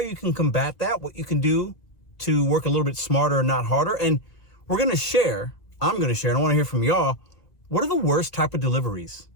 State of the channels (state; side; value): late; right; 2.0 ms